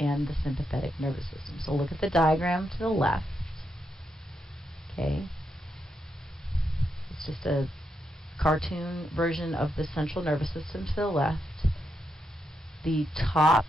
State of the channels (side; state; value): both; normal; correlation 0.82